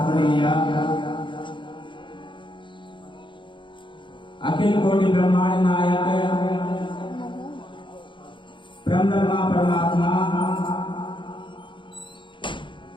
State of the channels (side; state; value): right; late; 0.23 ms